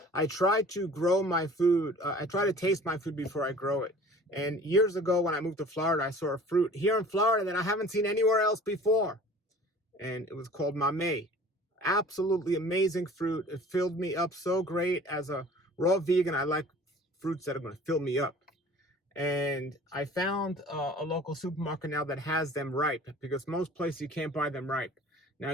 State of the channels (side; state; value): both; normal; correlation 0.46